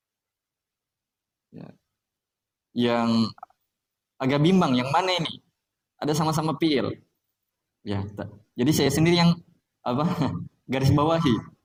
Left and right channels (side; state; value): both; identical; correlation 1.00